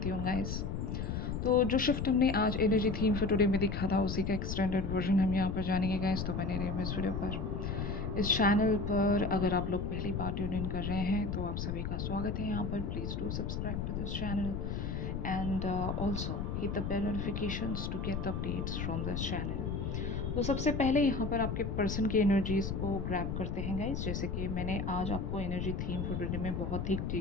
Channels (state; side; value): noise; left; rumble, 2 dB below the sound